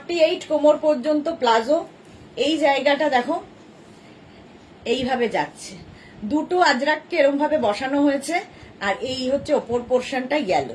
কোমর পর্যন্ত প্লাজো, এই জায়গাটা দেখো এইভাবে যাচ্ছে, দুটো আজরাককে এরকম ভাবে বসানো হয়েছে, আর এই হচ্ছে ওপর পোর্শনটা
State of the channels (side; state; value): both; identical; correlation 1.00